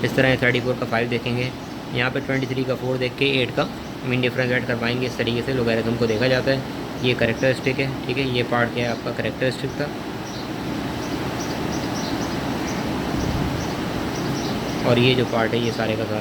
इस तरह 34 का 5 देखेंगे, यहाँ पे 23 का 4 देख के 8 का मीन डिफरेंस ऐड करवाएंगे। इस तरीके से लोगैरिथम को देखा जाता है। ये करेक्टरिस्टिक है, ठीक है। ये पार्ट क्या है आपका, करेक्टरिस्टिक था। और ये जो पार्ट है ये सारे का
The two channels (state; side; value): identical; both; correlation 1.00